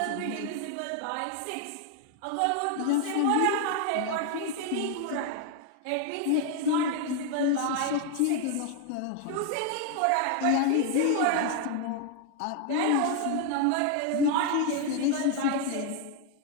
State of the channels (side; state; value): both; different; correlation 0.00